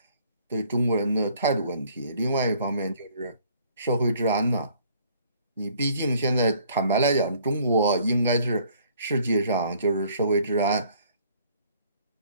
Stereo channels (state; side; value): inverted; both; correlation -0.59